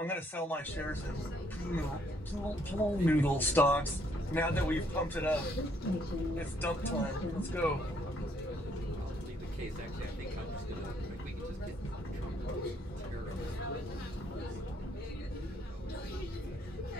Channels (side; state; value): both; normal; correlation 0.68